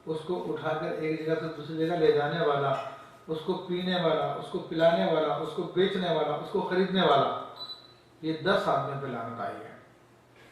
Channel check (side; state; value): both; identical; correlation 1.00